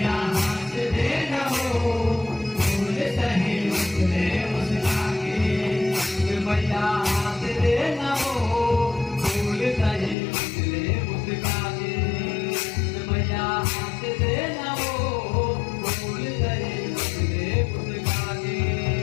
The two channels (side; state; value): right; drops out; at 10.2 s